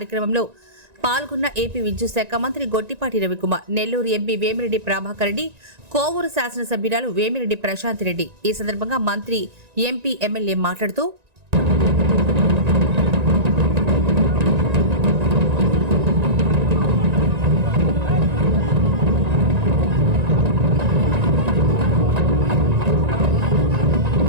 పాల్గొన్న ఏపీ విద్యుత్ శాఖ మంత్రి గొట్టిపాటి రవికుమార్, నెల్లూరు ఎంపీ వేమిరెడ్డి ప్రభాకర్ రెడ్డి, కోవూరు శాసనసభ్యురాలు వేమిరెడ్డి ప్రశాంత్ రెడ్డి. ఈ సందర్భంగా మంత్రి, ఎంపీ, ఎమ్మెల్యే మాట్లాడుతూ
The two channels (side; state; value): left; late; 1.9 ms